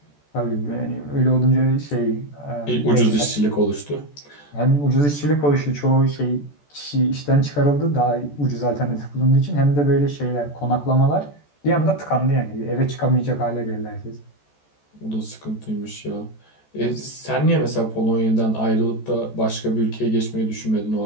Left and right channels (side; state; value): right; late; 14 ms